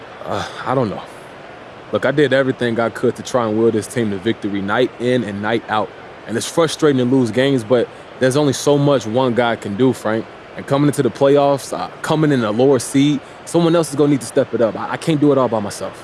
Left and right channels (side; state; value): both; identical; correlation 1.00